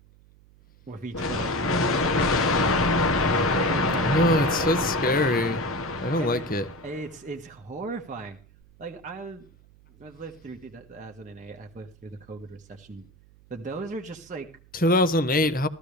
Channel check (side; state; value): right; noise; hum, 27 dB below the sound